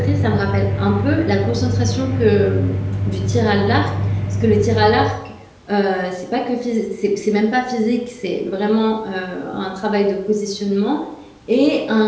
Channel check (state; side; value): identical; both; correlation 1.00